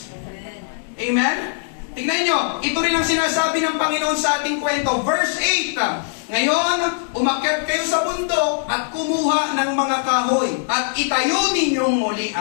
Amen? Tingnan nyo, ito rin ang sinasabi ng Panginoon sa ating kwento. Verse 8, ngayon, umakyat kayo sa bundok at kumuha ng mga kahoy at itayo ninyong muli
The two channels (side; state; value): right; silent; digital silence